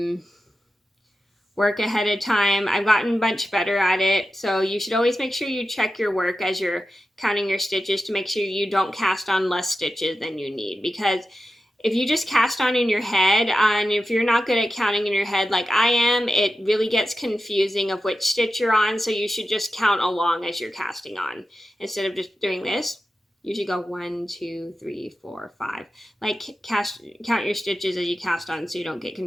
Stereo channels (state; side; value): normal; both; correlation 0.92